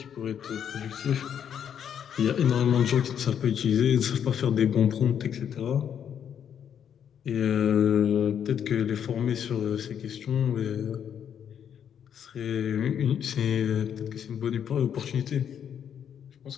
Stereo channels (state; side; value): quieter; right; 8.6 dB